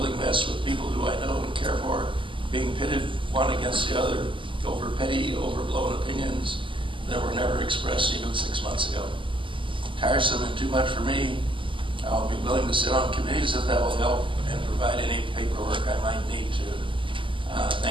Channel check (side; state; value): left; late; 0.25 ms